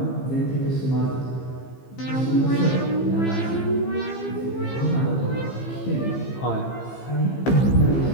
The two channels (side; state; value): right; late; 15 ms